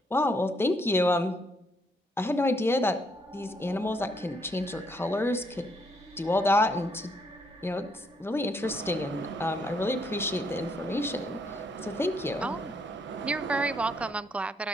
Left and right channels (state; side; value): normal; both; correlation 0.72